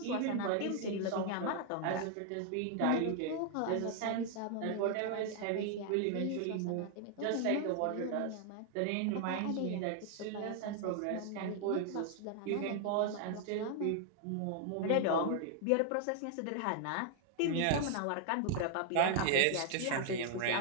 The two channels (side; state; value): both; different; correlation 0.00